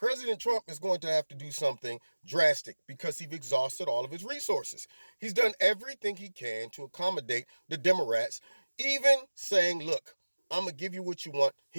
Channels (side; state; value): both; inverted; correlation -1.00